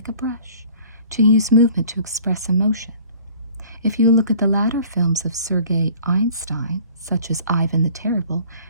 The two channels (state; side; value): inverted; both; correlation -0.50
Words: a brush, to use movement to express emotion. If you look at the latter films of Sergei Einstein, such as Ivan the Terrible,